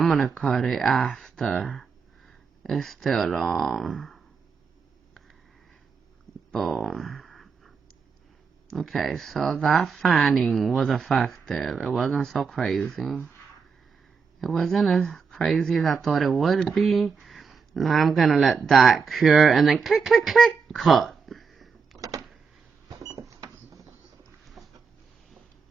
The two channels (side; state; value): left; quieter; 5.5 dB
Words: gonna cut it after. It's still long. Boom. Okay, so that fanning was effective. It wasn't so crazy. It wasn't as crazy as I thought it would be. Now I'm gonna let that cure and then click, click, click, cut.